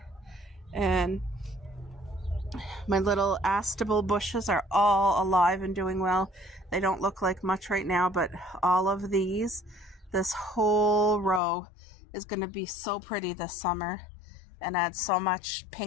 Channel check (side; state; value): right; drops out; at 11.4 s